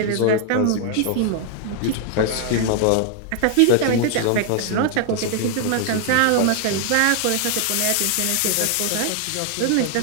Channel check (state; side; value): different; both; correlation 0.00